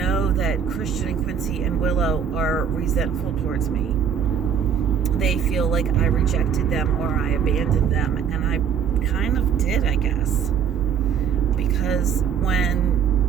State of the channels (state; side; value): quieter; left; 7.9 dB